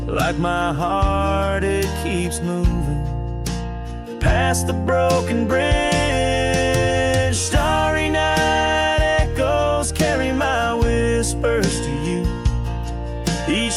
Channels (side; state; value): both; identical; correlation 1.00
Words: Like my heart, it keeps moving past the broken bridge. Starry night echoes carry my whispers to you.